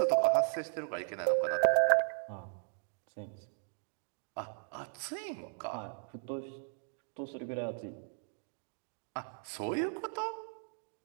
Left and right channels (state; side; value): silent; left; digital silence